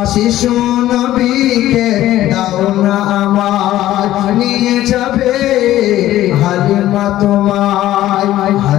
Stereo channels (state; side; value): quieter; right; 14.1 dB